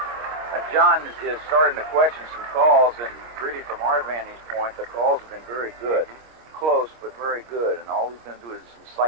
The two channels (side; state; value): left; late; 25 ms